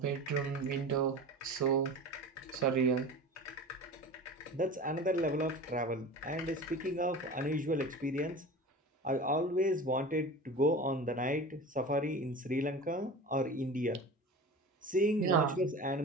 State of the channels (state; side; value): normal; both; correlation 0.34